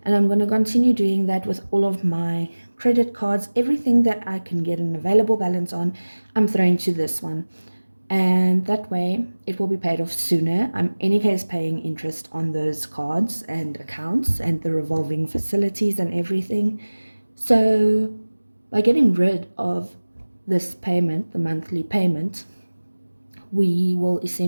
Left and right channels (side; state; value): both; inverted; correlation -1.00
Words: And I'm going to continue doing that with all of my credit cards. Everything that I can get an available balance on, I'm throwing to this one. And that way it will be paid off sooner. I'm in any case paying interest on those cards and accounts and the revolving facilities and everything. So by getting rid of this payment, the monthly payment, we will